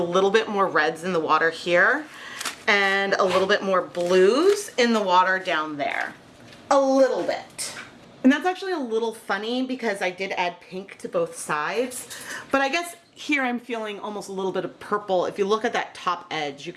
bit more reds in the water here and a little bit more blues in the water down there. A little bit. And that's actually a little funny because I did add pink to both sides, but I guess here I'm feeling almost a little bit of purple. If you look at that top edge, you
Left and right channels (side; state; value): both; identical; correlation 1.00